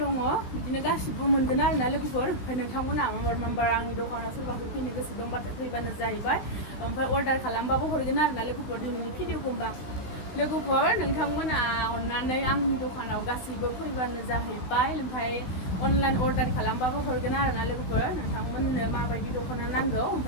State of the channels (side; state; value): right; late; 16 ms